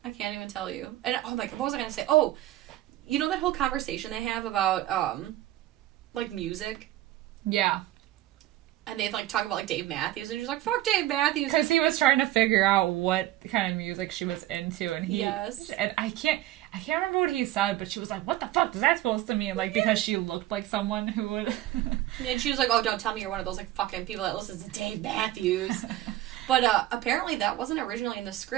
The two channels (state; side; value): quieter; left; 14.8 dB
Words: tell you. And oh my god, what was I gonna say? Oh, you know that whole conversation they have about, like, music? Yeah. And they, like, talk about, like, Dave Matthews, and she's like, fuck Dave Matthews. Because he was trying to figure out what kind of music she was into, and and I can't remember what he said, but she was like, what the fuck is that supposed to mean? Like, because she looked like someone who would... And she was like, oh, don't tell me you're one of those, like, fucking people that listens to Dave Matthews. But, apparently that wasn't originally in the